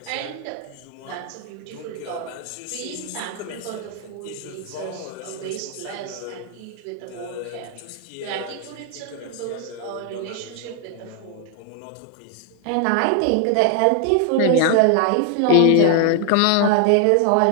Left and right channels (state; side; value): different; both; correlation 0.00